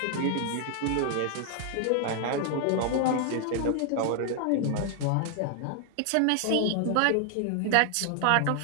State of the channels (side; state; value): both; different; correlation 0.00